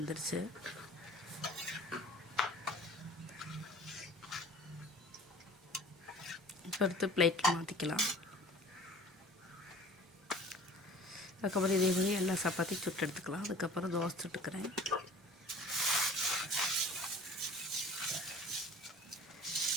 இப்போ எடுத்து பிளேட்டில் மாற்றிக்கலாம். அதுக்கப்புறம் இதே மாதிரி எல்லா சப்பாத்தியும் சுட்டு எடுத்துக்கலாம். அதுக்கப்புறம் தோசை சுட்டுக்கிறேன்.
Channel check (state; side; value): normal; both; correlation 0.45